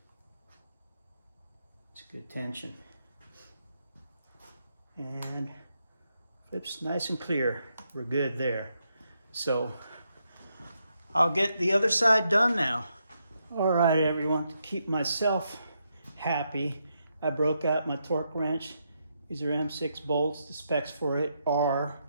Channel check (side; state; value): both; inverted; correlation -0.81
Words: good tension. And flips nice and clear. We're good there. So I'll get the other side done now. All right, everyone, to keep myself happy, I broke out my torque wrench. These are M6 bolts. The specs for it are